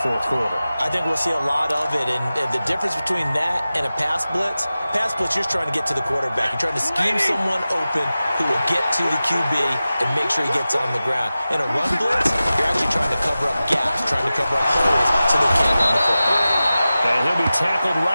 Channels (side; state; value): both; inverted; correlation -0.95